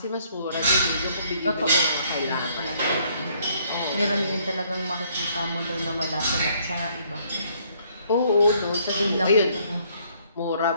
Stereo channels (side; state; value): both; inverted; correlation -0.65